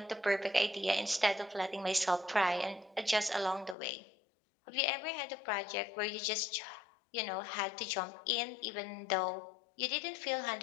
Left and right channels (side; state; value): right; drops out; at 3.8 s